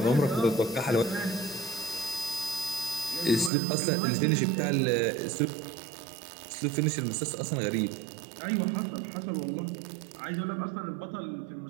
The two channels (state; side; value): drops out; left; at 3.5 s